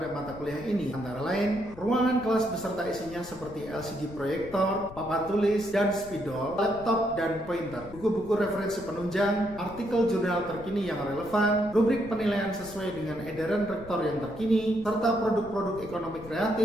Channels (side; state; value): left; noise; rumble, 17 dB below the sound